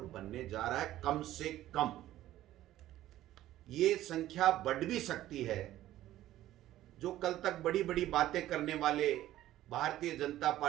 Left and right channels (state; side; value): quieter; left; 14.1 dB